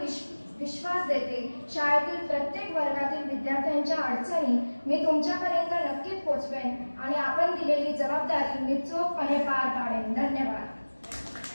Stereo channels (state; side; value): inverted; both; correlation -1.00